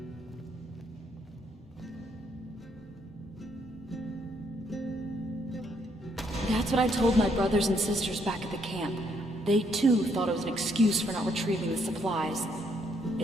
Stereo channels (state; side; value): normal; both; correlation 0.72